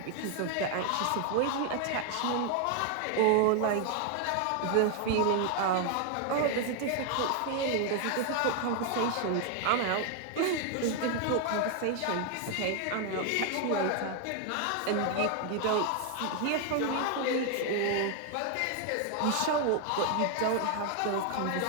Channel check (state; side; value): different; both; correlation 0.00